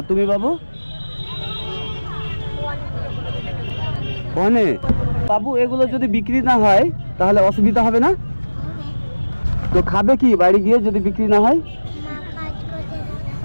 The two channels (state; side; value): inverted; both; correlation -1.00